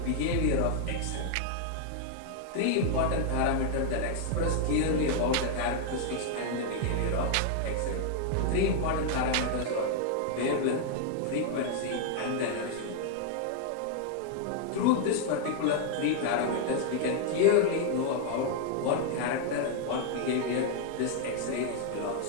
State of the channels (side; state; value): both; different; correlation 0.00